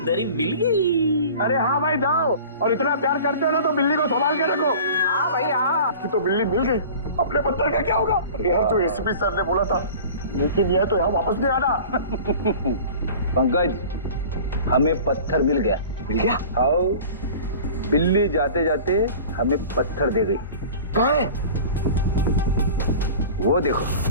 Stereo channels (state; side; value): inverted; both; correlation -0.41